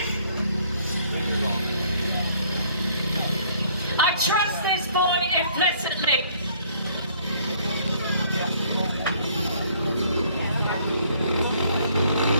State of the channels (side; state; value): both; inverted; correlation -0.61